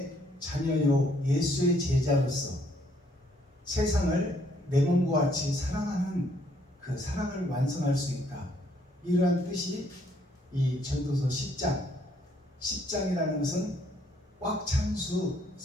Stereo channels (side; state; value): both; normal; correlation 0.67